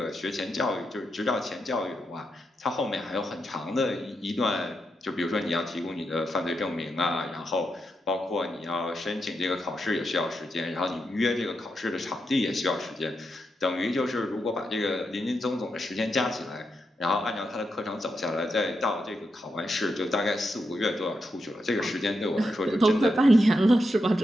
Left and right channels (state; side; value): normal; both; correlation 0.84